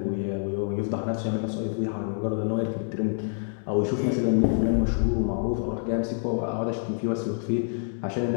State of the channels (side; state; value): right; silent; digital silence